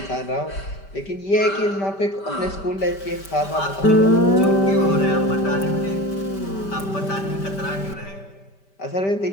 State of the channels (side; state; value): right; late; 5.1 ms